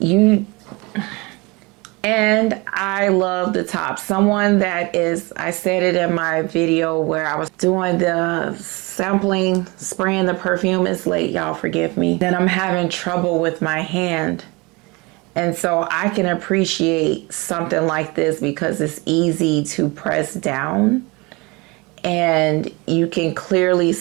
And I love the top. Someone that is, I said it in my video where I was doing the sampling, spraying the perfume. It's late, y'all, forgive me. Then I'm having trouble with my hand. And so I can appreciate something like this because it's easy to press down. And you can clearly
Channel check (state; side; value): quieter; left; 25.9 dB